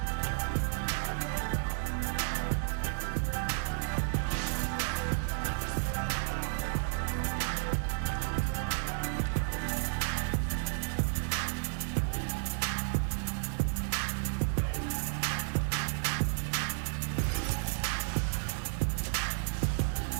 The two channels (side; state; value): left; silent; digital silence